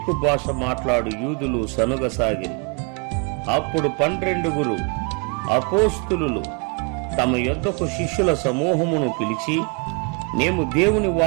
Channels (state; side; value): quieter; left; 33.5 dB